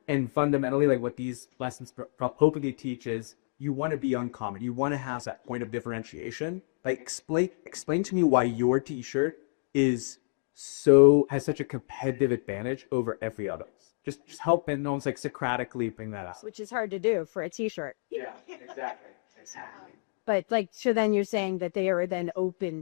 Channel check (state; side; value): silent; right; digital silence